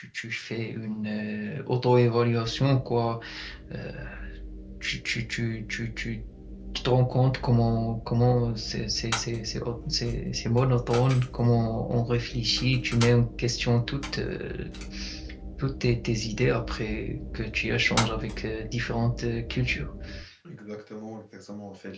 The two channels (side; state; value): both; identical; correlation 1.00